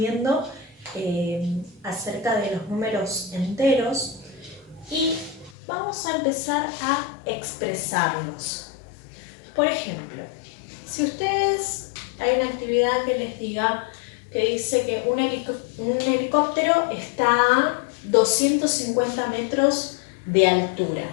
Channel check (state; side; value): drops out; right; at 5.6 s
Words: acerca de los números enteros y vamos a empezar a expresarlos. Por ejemplo, si ustedes hay una actividad que les diga que dice que un helicóptero está a 250 metros de altura.